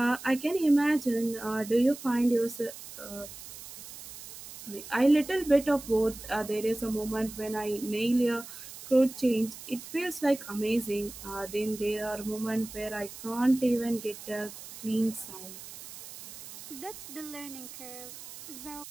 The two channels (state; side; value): noise; right; hiss, 14 dB below the sound